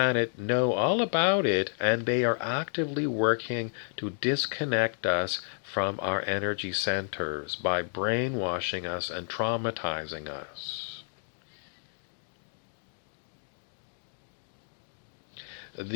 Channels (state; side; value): silent; right; digital silence